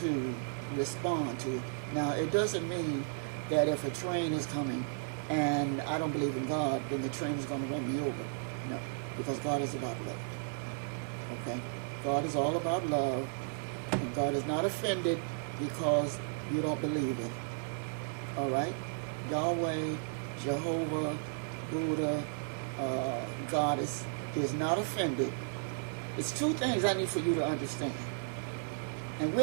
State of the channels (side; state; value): left; silent; digital silence